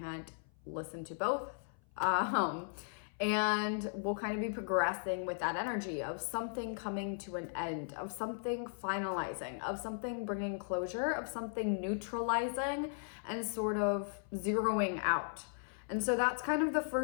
listen to both. And we'll kind of be progressing with that energy of something coming to an end, of something finalizing, of something bringing closure, of something neutralizing and sort of zeroing out. And so that's kind of the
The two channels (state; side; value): silent; right; 53 dB below the other